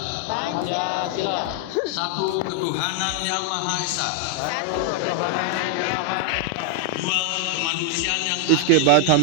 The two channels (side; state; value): both; different; correlation 0.00